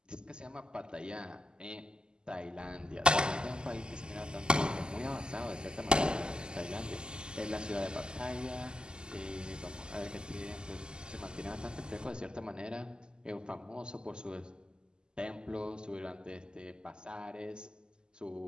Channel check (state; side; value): late; left; 0.046 ms